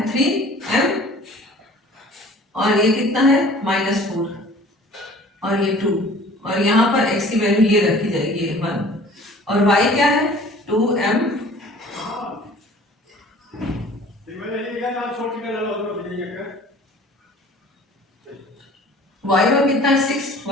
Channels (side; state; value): both; normal; correlation 0.48